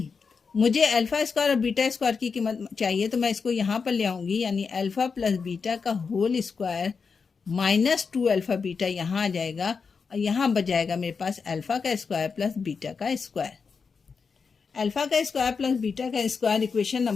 मुझे अल्फ़ा स्क्वायर और बीटा स्क्वायर की कीमत चाहिए, तो मैं इसको यहाँ पर ले आऊँगी, यानी अल्फ़ा प्लस बीटा का whole square minus 2 alpha beta यहाँ आ जाएगा, और यहाँ बच जाएगा मेरे पास अल्फ़ा का स्क्वायर प्लस बीटा का स्क्वायर। अल्फ़ा का स्क्वायर प्लस बीटा का स्क्वायर इक्वेशन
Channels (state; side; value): quieter; right; 5.3 dB